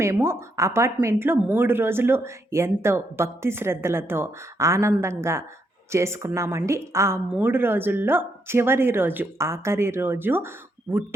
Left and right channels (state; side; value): normal; both; correlation 0.77